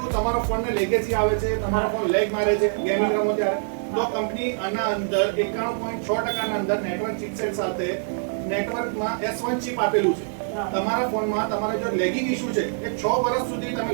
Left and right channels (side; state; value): left; silent; 62 dB below the other